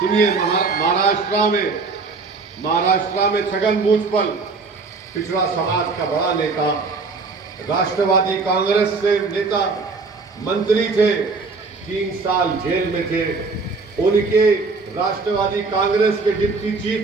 महाराष्ट्र में छगन भुजबल पिछड़ा समाज का बड़ा नेता, राष्ट्रवादी कांग्रेस से नेता, मंत्री थे, 3 साल जेल में थे। उनके राष्ट्रवादी कांग्रेस के डिप्टी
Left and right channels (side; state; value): left; quieter; 4.2 dB